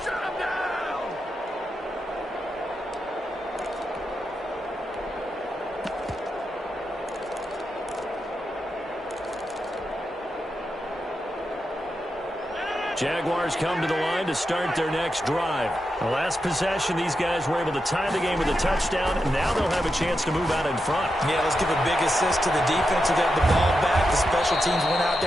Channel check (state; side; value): normal; both; correlation 0.87